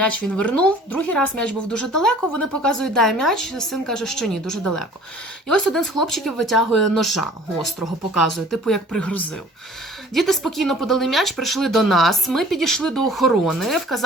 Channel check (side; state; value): both; normal; correlation 0.50